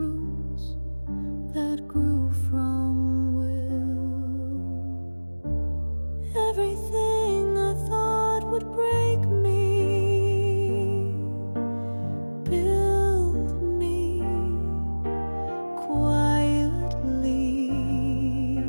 that grew from will. Everything I thought would break me built me quietly.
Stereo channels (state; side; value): inverted; both; correlation -1.00